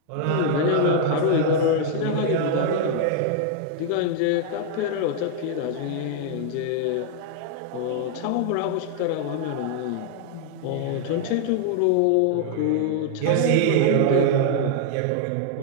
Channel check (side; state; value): both; different; correlation 0.00